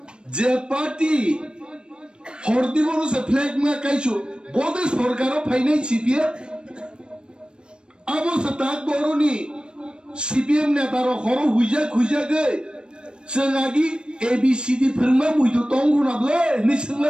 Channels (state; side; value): late; left; 0.053 ms